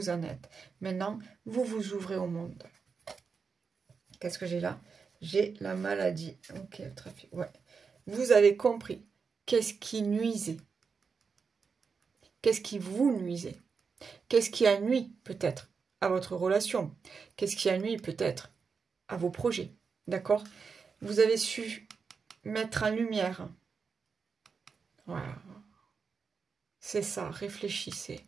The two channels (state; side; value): quieter; left; 5.4 dB